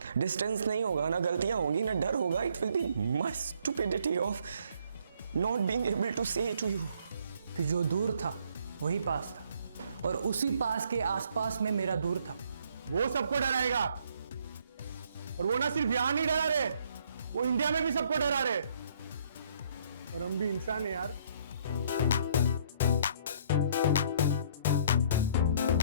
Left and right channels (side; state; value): both; inverted; correlation -0.63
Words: Distance नहीं होगा ना, गलतियां होंगी ना, डर होगा। It will be my stupidity of not being able to say to you कि जो दूर था वही पास था, और उसी पास के आसपास में मेरा दूर था। वो सबको डराएगा, और वो ना सिर्फ यहां नहीं डरा रहे, वो इंडिया में भी सबको डरा रहे। और हम भी इंसान है यार,